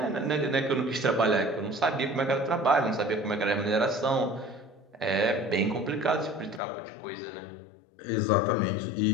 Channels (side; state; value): right; drops out; at 6.6 s